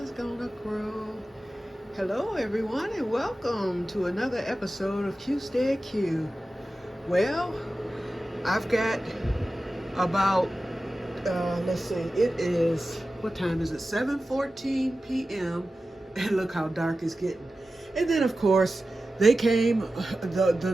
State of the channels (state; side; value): normal; both; correlation 0.94